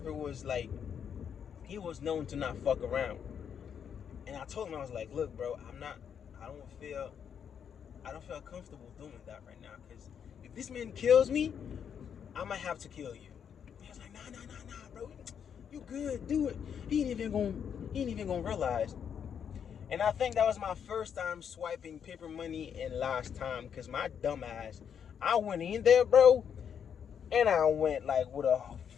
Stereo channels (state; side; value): quieter; right; 7.9 dB